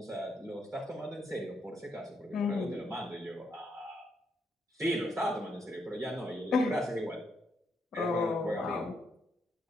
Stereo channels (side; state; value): both; normal; correlation 0.77